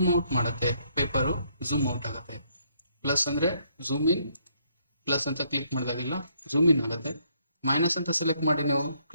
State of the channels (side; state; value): both; inverted; correlation -0.70